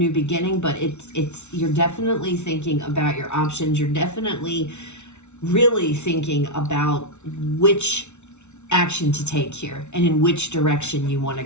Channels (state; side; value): late; right; 0.82 ms